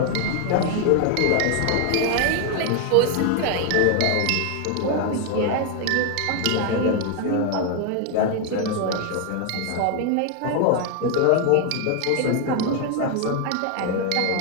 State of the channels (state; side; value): different; both; correlation 0.01